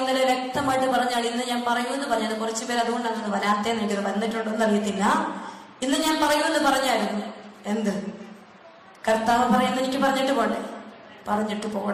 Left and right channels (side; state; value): both; identical; correlation 1.00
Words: വ്യക്തമായിട്ട് പറഞ്ഞാൽ, ഇന്ന് ഞാൻ പറയുമെന്ന് പറഞ്ഞത് കുറച്ചു പേര് അതുകൊണ്ടാണ് വരാത്തേന്ന് എനിക്ക് വന്നിട്ടുണ്ടോന്ന് അറിയത്തില്ല. ഇന്ന് ഞാൻ പറയുമെന്ന് പറഞ്ഞായിരുന്നു. എന്ത് കർത്താവ് പറയുന്ന എനിക്ക് പറഞ്ഞിട്ട് പോട്ടെ, പറഞ്ഞിട്ട്